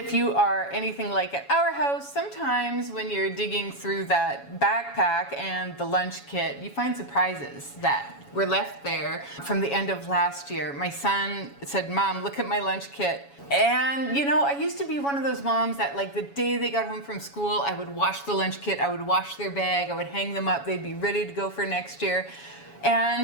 you are anything like at our house, sometimes when you're digging through that backpack and the lunch kit, you find surprises that were left there from the end of last year. My son said, "Mom, look at my lunch kit." And you know, I used to be one of those moms that like the day they got home from school, I would wash the lunch kit, I would wash their bag, I would hang them up, they'd be ready to go for next year.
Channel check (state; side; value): late; right; 7.2 ms